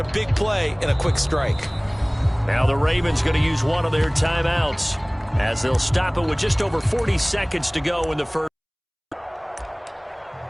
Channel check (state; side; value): identical; both; correlation 1.00